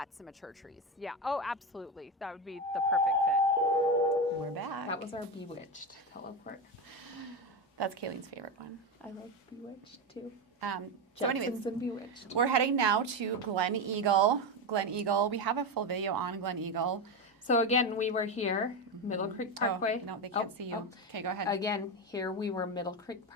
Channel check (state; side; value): normal; both; correlation 0.15